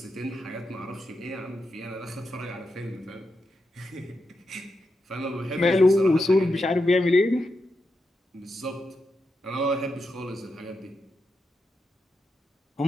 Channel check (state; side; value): normal; both; correlation 0.86